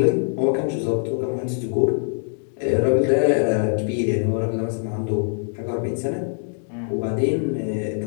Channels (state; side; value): silent; right; 63 dB below the other